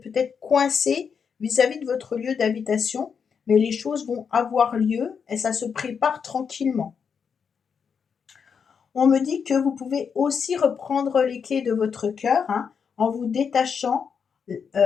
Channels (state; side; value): quieter; right; 6.5 dB